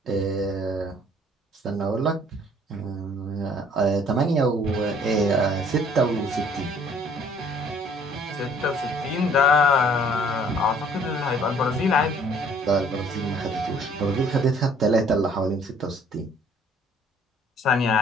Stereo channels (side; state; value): both; normal; correlation 0.58